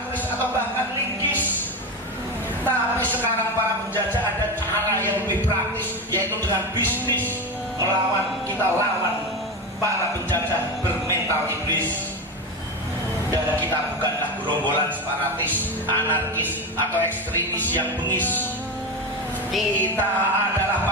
keris atau bahkan linggis. Tapi sekarang para penjajah ada cara yang lebih praktis, yaitu dengan bisnis. Melawan, kita lawan para penjajah bermental iblis. Dan kita bukanlah gerombolan separatis, anarkis atau ekstremis yang bengis. Kita adalah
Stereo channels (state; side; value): normal; both; correlation 0.19